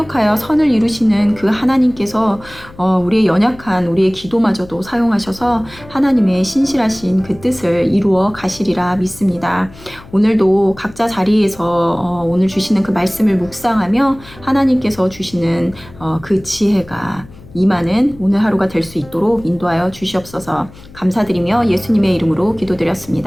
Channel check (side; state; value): left; noise; hum, 20 dB below the sound